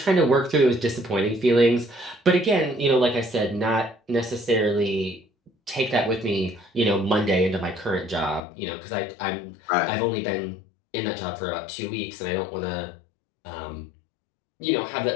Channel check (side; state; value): right; drops out; at 8.4 s